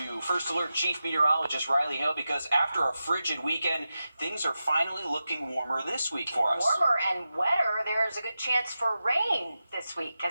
First Alert Chief Meteorologist Riley Hill, because after a frigid weekend, things are finally looking warmer this week for us. Warmer and wetter. There's a good chance for rain this week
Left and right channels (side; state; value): both; inverted; correlation -0.92